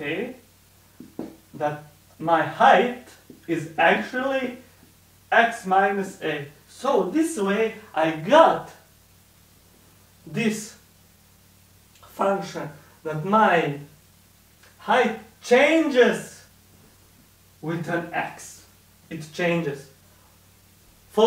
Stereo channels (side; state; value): both; identical; correlation 1.00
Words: that my height is actually x minus a. So this way I got this function that my height changes with an x. It changes.